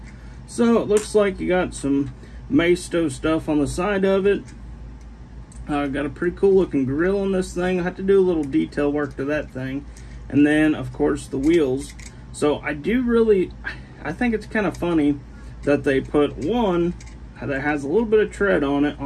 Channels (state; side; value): identical; both; correlation 1.00